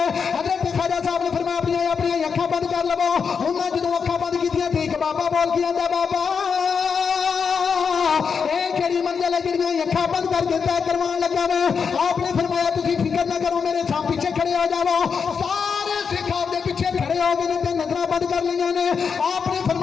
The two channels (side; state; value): right; quieter; 6.1 dB